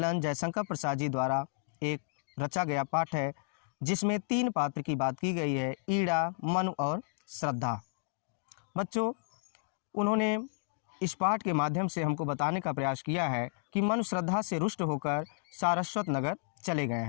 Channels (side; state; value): right; silent; digital silence